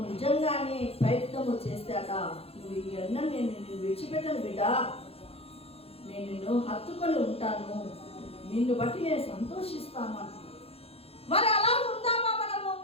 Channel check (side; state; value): right; late; 0.29 ms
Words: నిజంగానే ప్రయత్నము చేస్తాట, నువ్వు ఇవన్నీ నేను విడిచిపెట్టను బిడ్డ, నేను నిన్ను హత్తుకొని ఉంటాను, నిన్ను బట్టి నేను సంతోషిస్తాను అంటున్నాడు. మరి అలా ఉందామా మనము?